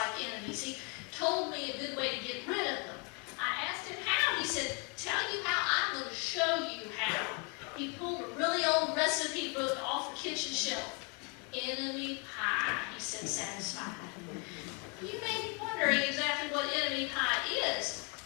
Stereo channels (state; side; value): quieter; right; 33.9 dB